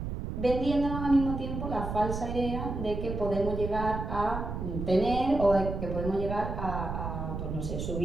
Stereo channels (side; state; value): right; noise; rumble, 5 dB below the sound